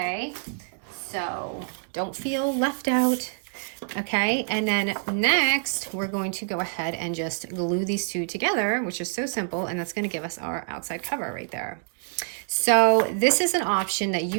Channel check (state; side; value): silent; left; digital silence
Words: So don't feel left out. Okay, and then next we're going to go ahead and just glue these two together, which is so simple, and that's going to give us our outside cover right there. So this is an option that